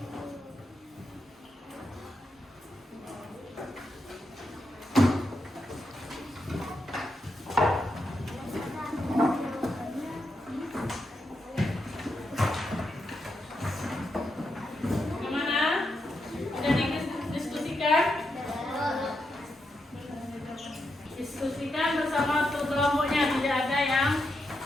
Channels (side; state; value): both; normal; correlation 0.84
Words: Diskusikan bersama kelompoknya, tidak ada yang